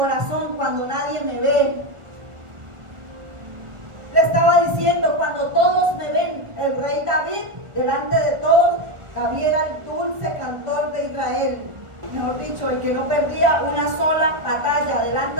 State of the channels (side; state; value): left; late; 1.4 ms